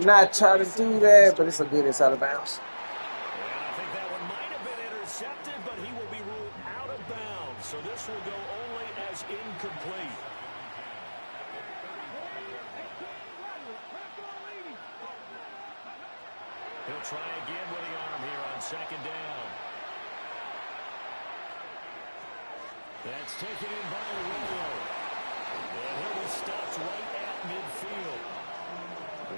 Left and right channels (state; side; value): inverted; both; correlation -1.00